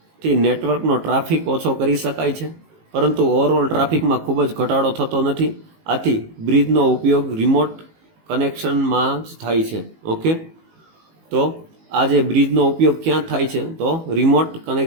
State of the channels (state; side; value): late; left; 18 ms